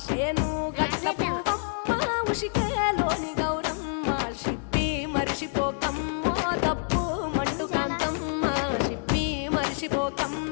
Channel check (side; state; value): right; silent; digital silence